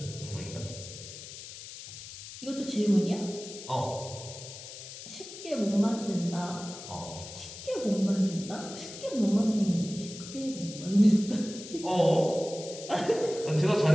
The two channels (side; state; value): left; noise; hiss, 13 dB below the sound